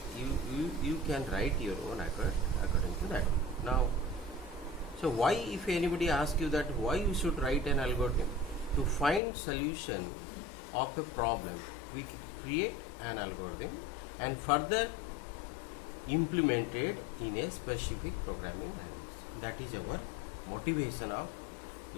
you can write your own according to that. Now, so why, if anybody asks you that why you should write an algorithm? To find solution of a problem, we create an algorithm and further implemented in a specific programming language. That is our motivation of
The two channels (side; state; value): right; drops out; at 9.2 s